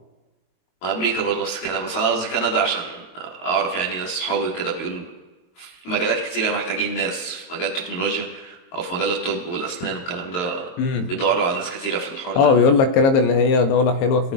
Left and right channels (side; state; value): right; late; 22 ms